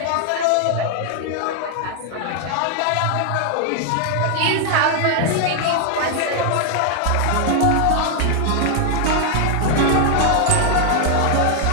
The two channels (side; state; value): both; different; correlation 0.00